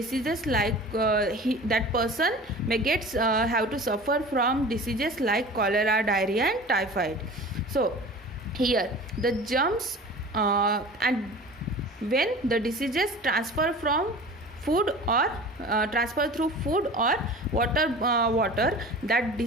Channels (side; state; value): both; normal; correlation 0.39